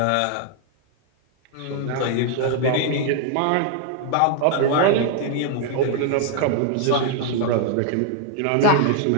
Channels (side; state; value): both; different; correlation 0.00